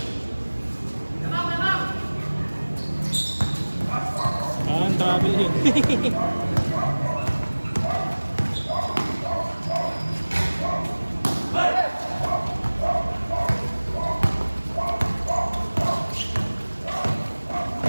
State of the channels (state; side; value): inverted; both; correlation -1.00